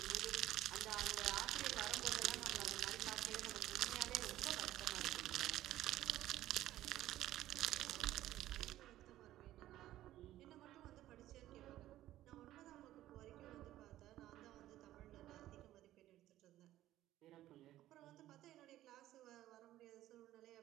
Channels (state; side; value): quieter; left; 14.2 dB